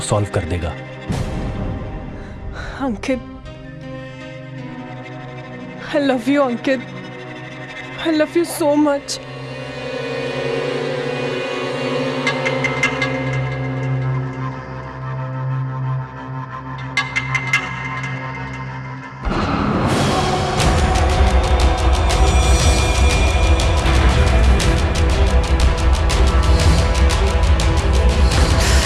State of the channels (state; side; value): identical; both; correlation 1.00